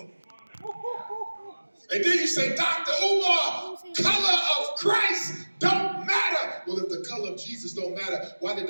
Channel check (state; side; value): inverted; both; correlation -1.00